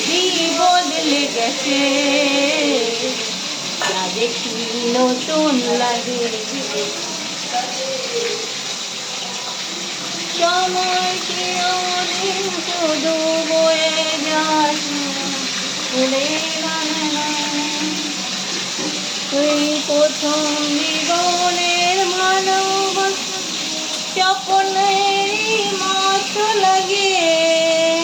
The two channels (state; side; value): identical; both; correlation 1.00